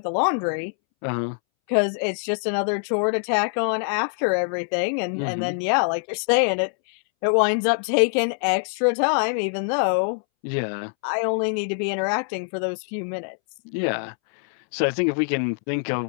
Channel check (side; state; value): right; silent; 63 dB below the other